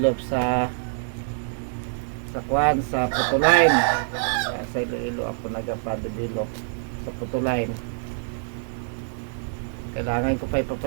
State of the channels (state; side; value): silent; left; 61 dB below the other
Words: sa kwan, sa putuline. Sa Iloilo ako nagpa-develop sa putuline. Kailangan ko pa